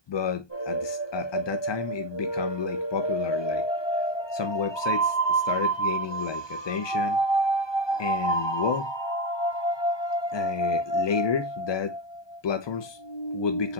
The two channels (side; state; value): right; late; 1.2 ms